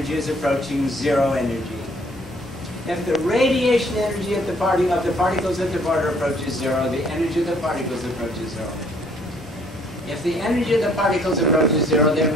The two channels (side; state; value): both; normal; correlation 0.62